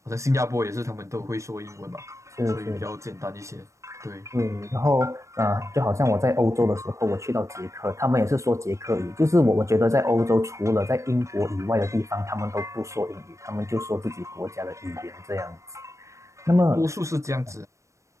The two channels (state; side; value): late; left; 0.15 ms